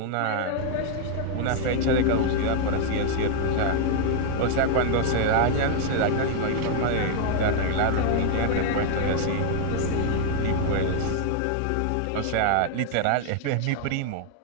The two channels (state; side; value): different; both; correlation 0.00